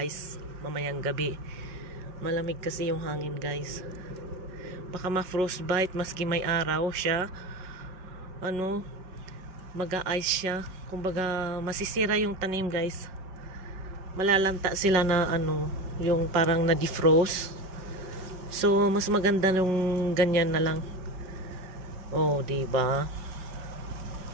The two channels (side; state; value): left; late; 5.4 ms